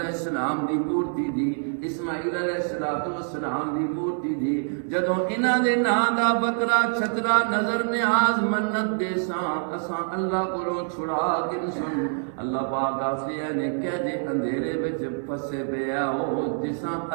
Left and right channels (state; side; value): silent; left; 61 dB below the other